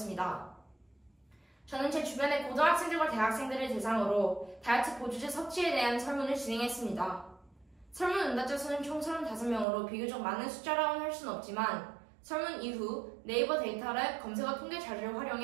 저는 제 주변의 고등학생들과 대학생들을 대상으로 다이어트 보조제 섭취에 대한 설문을 진행했습니다. 설문 응답자 수는 총 35명으로 비교적 많은 숫자라고는 할 수는 없지만 설문 이후 네이버 데이터랩 검색어 통계 자료를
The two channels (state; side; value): drops out; left; at 9.7 s